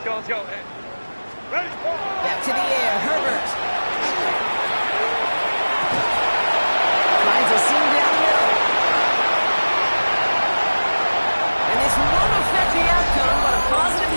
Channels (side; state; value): both; inverted; correlation -1.00